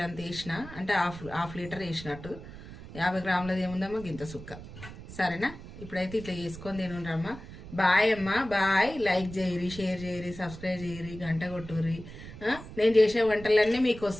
అంత వేసిన, అంటే హాఫ్ లీటర్ వేసినట్టు. 50 గ్రాములది ఏముందమ్మా గింత సుక్క. సరేనా? ఇప్పుడైతే ఇట్లా చేసుకొని తినుండ్రమ్మా. బాయ్ అమ్మా, బాయ్. లైక్ చేయరి, షేర్ చేయరి, సబ్స్క్రైబ్ చేయరి, గంట కొట్టుర్రి. నేను చేసే వంటలన్నీ మీకు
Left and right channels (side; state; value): right; noise; rumble, 14 dB below the sound